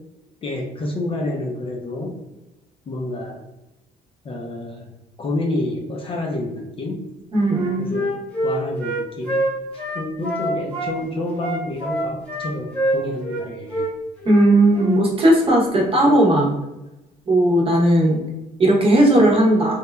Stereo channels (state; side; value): normal; both; correlation 0.70